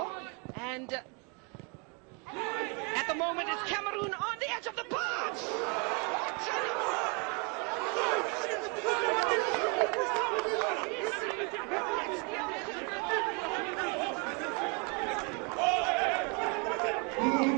and at the moment it's Cameroon on the edge of the box.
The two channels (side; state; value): left; quieter; 34.1 dB